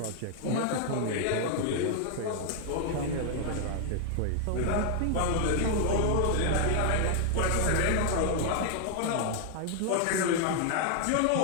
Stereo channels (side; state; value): both; different; correlation 0.00